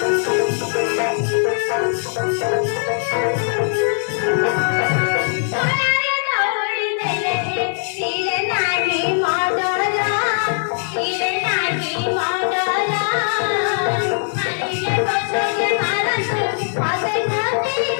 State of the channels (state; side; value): silent; right; digital silence